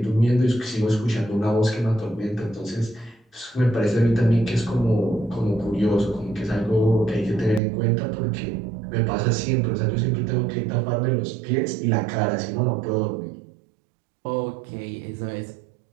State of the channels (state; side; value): drops out; left; at 7.6 s